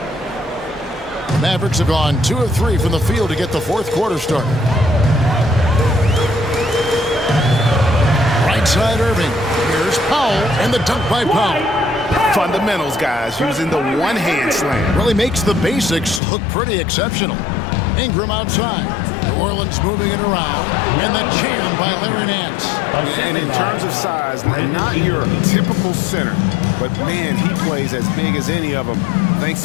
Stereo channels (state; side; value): drops out; right; at 16.2 s